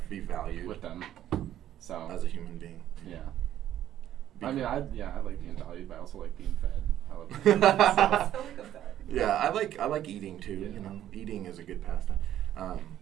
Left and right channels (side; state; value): left; quieter; 11.8 dB